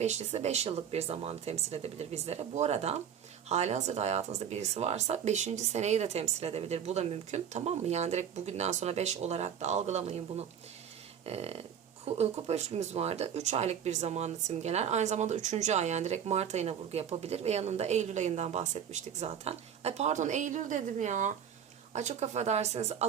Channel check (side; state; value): left; quieter; 8.5 dB